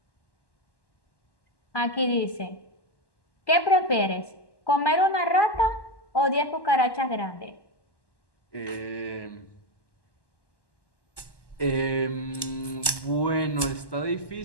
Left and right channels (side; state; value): right; late; 1.1 ms